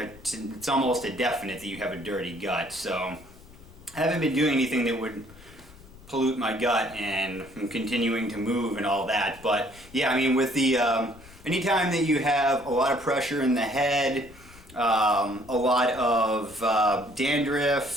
almost a definite that you have a dirty gut. So I haven't been doing anything that would pollute my gut, and I'm continuing to move and all that. But yeah, I mean, with the, anytime that you have a lot of pressure in the head, a lot of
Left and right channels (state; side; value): noise; left; rumble, 22 dB below the sound